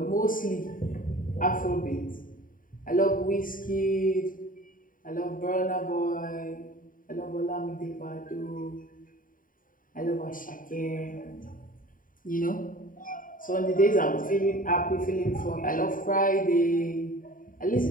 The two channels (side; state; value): right; late; 0.40 ms